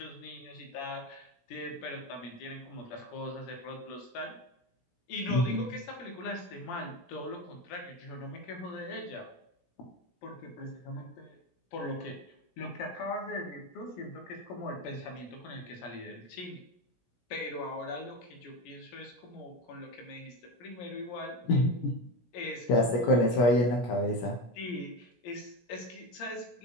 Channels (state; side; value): late; right; 17 ms